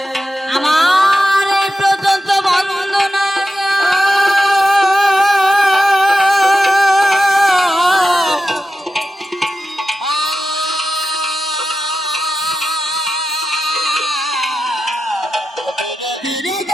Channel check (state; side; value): normal; both; correlation 0.92